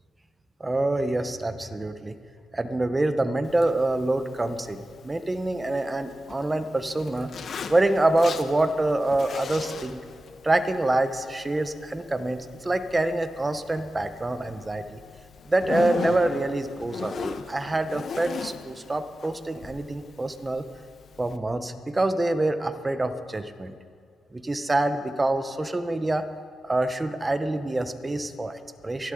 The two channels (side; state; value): both; normal; correlation 0.95